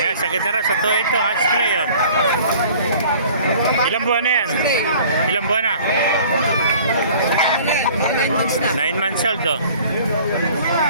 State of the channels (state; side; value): inverted; both; correlation -0.50